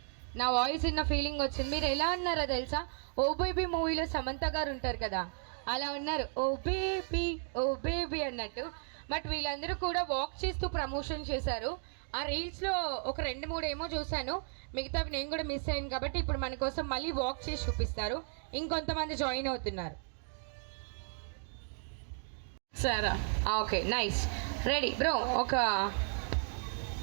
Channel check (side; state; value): left; silent; 55 dB below the other